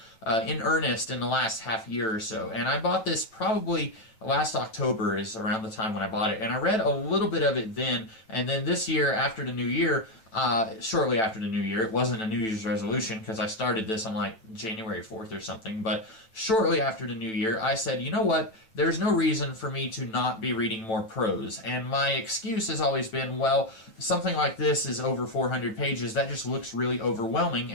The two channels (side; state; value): right; late; 9.1 ms